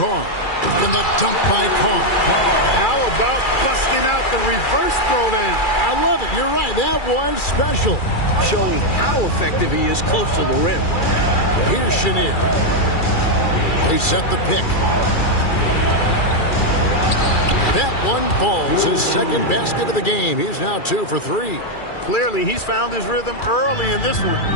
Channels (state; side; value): late; right; 2.3 ms